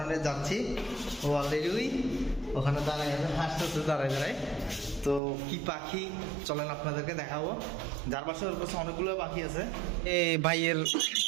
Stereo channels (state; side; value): drops out; left; at 5.2 s